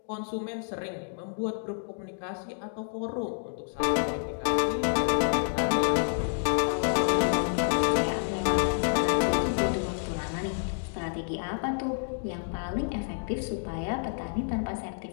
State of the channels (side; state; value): right; silent; digital silence